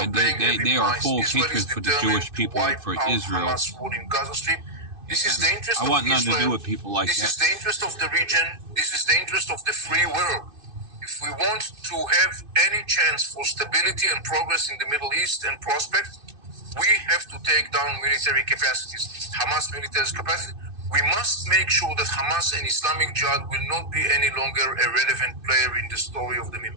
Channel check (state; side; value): late; left; 2.6 ms